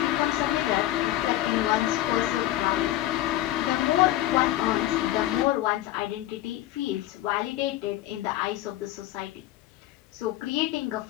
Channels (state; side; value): quieter; right; 14.6 dB